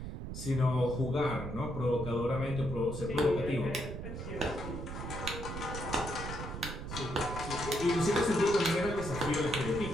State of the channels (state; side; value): noise; right; rumble, 7 dB below the sound